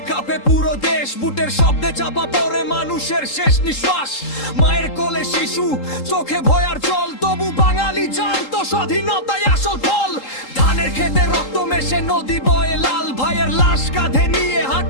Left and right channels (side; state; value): right; late; 3.8 ms